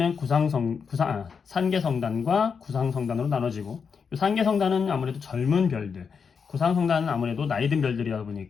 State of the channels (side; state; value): right; quieter; 6.0 dB